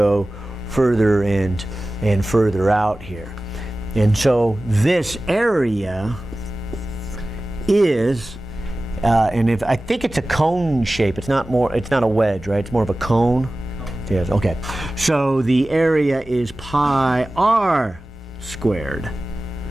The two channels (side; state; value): both; normal; correlation 0.96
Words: further and further out here. And so this area is, and if I think it's a cone shape, it's not a wedge, right? It's more of a cone. Yes, okay. So the area is pi r squared